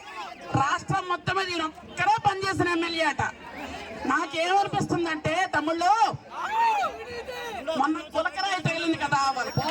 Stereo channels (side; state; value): both; identical; correlation 1.00